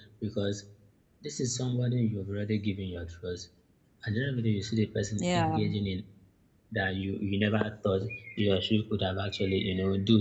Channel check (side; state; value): both; identical; correlation 1.00